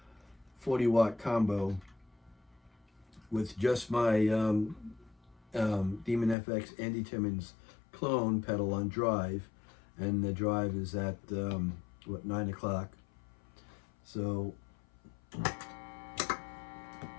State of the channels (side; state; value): right; drops out; at 6.4 s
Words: 40-watt combo with just my Demon FX Andy Timmons clone pedal on drive, and the drive is at 9 o'clock. So